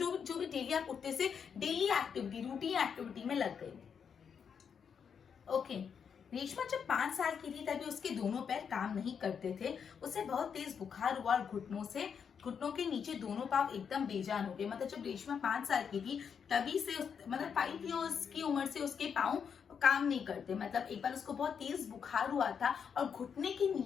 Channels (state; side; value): quieter; right; 7.0 dB